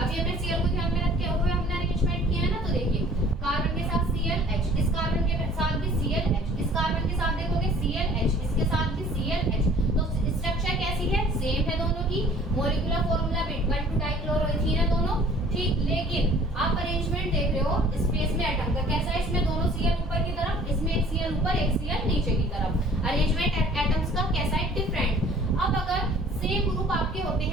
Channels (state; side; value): normal; both; correlation 0.52